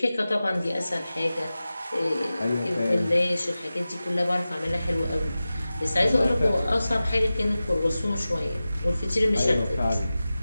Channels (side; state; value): both; inverted; correlation -0.95